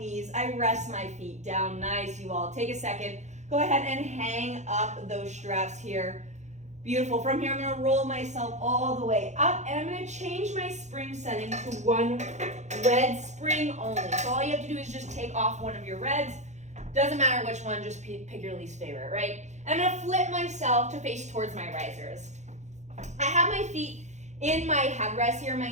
I rest my feet down. Nice, you all. Take a second. Go ahead and hang up those straps here. Beautiful. From here, I'm going to roll myself all the way up, and I'm going to change my spring setting to 1 red spring only. So all you have to do is just take off one of your reds. Doesn't matter which one, just pick your least favorite, right? And I'm going to flip myself to face towards my risers. I have my feet in my headrest here. My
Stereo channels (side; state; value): left; late; 0.34 ms